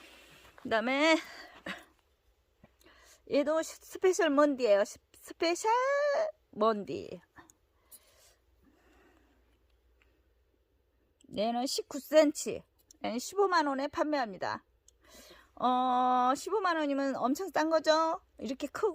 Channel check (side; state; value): both; identical; correlation 1.00